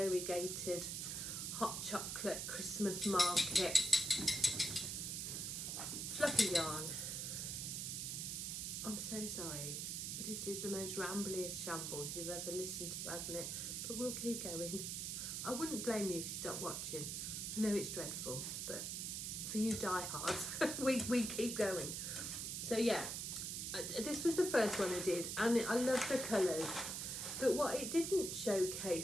hot chocolate Christmas market fluffy yarn. I'm so sorry. This is the most rambliest shambles you've ever listened to, hasn't it? But we'll keep going. I wouldn't blame you if you stopped watching. I know it's dreadful, but for you diehards, we keep going. So yeah, this was the first one I did, and I love the colours. But what it didn't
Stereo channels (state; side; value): noise; right; hiss, 3 dB below the sound